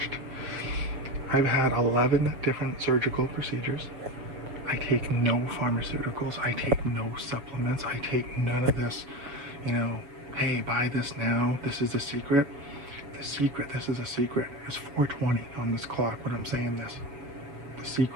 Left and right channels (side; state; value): left; late; 7.1 ms